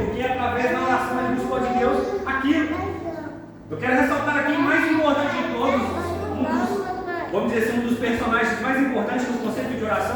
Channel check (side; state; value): both; identical; correlation 1.00